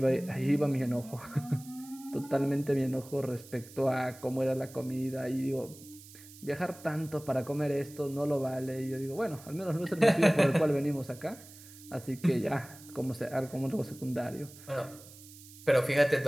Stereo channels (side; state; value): right; noise; hiss, 19 dB below the sound